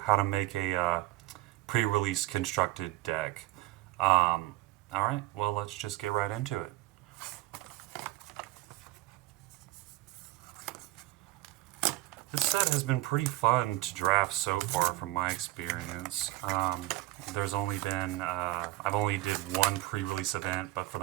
to make a pre-release constructed deck. All right, well, let's just get right into it. This set has been pretty fun to draft so far from my experience. There's only been, I've only did one pre-release event, but for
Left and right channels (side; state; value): left; quieter; 18.2 dB